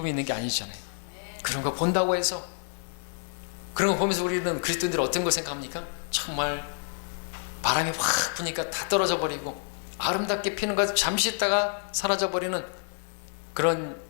있는 게 아니잖아요. 그런 거 본다고 해서, 그런 거 보면서 우리는 그리스도인들이 어떤 걸 생각합니까? 정말 바람이 확 부니까 다 떨어져 버리고 아름답게 피는 것 잠시 있다가 사라져 버리는 그런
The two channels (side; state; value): right; silent; 59 dB below the other